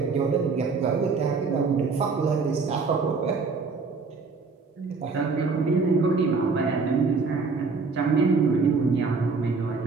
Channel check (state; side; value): quieter; left; 4.5 dB